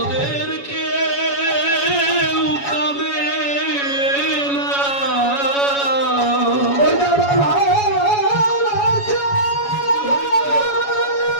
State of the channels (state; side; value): late; right; 7.1 ms